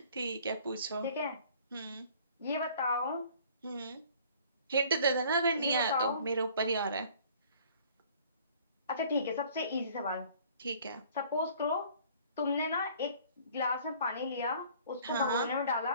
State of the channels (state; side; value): inverted; both; correlation -0.53